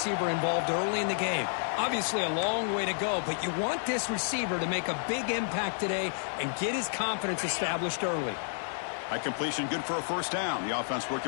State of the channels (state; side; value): silent; right; 57 dB below the other